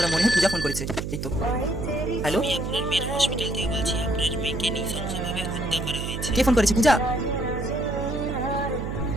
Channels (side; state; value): right; noise; hum, 5 dB below the sound